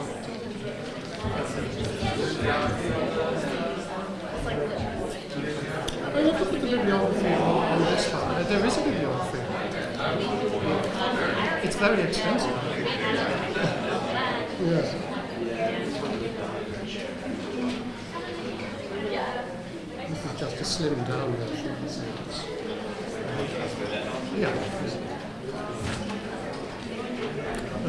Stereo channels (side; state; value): both; identical; correlation 1.00